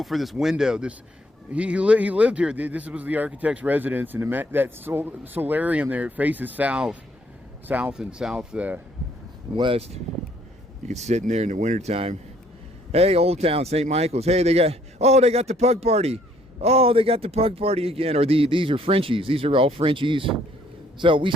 for this window. He lived here. This was the architect's residence, and that solarium there, it faces south and southwest. You can sit in there in the wintertime. Hey, Old Town, St. Michael's. Hey, they got the pug party. Oh, they got the pug party again. Or these are Frenchies. These are all Frenchies. So we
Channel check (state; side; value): normal; both; correlation 0.65